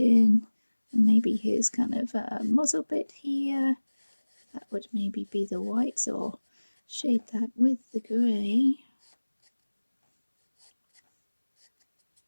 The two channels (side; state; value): both; inverted; correlation -1.00